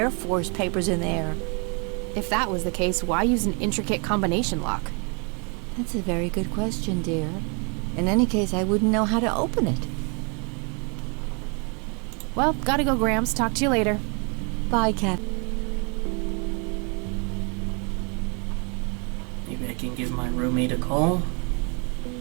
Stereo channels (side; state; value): left; quieter; 35.0 dB